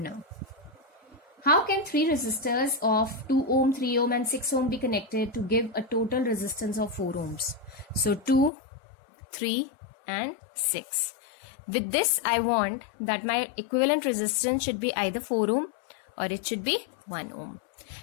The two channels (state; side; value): drops out; right; at 8.5 s